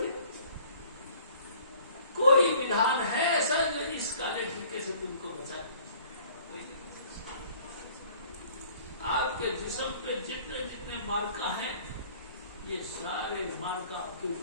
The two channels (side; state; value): both; inverted; correlation -0.53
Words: कोई विधान है ऐसा इस काले टीके से तुमको बचाने? आपके जिस्म पे जितने जितने मार्का हैं, ये सारे मार्का आपके